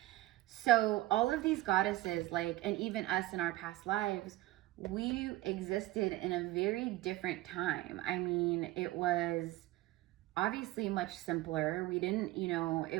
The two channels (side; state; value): left; quieter; 17.4 dB